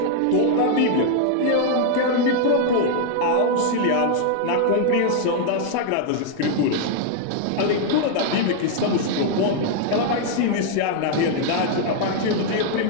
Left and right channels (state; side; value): different; both; correlation 0.00